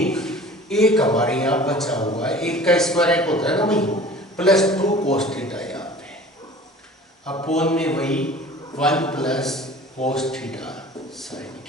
एक हमारे यहाँ बचा हुआ है, एक का स्क्वायर एक होता है ना भाई, प्लस 2 कोस थीटा यहाँ पे अपोन में वही 1 plus cos theta sine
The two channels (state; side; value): normal; both; correlation 0.44